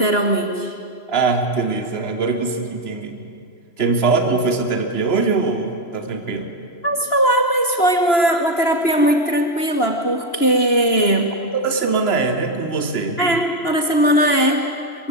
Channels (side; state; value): right; late; 3.0 ms